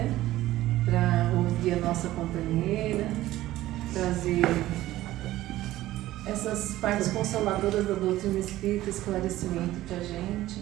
Para ouvir a nossa companheira, trazer essas partes consoladoras da doutrina espírita, esclarecimento para a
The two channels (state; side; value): quieter; left; 15.5 dB